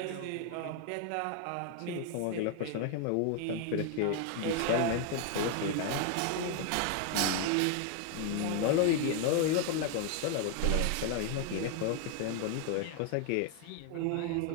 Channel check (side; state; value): both; different; correlation 0.00